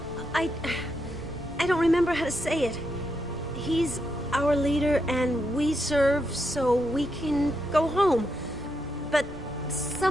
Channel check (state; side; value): normal; both; correlation 0.82